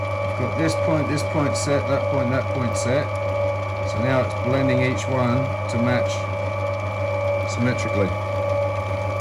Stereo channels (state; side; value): identical; both; correlation 1.00